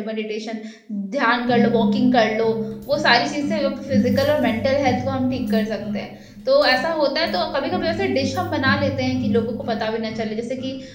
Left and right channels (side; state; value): both; identical; correlation 1.00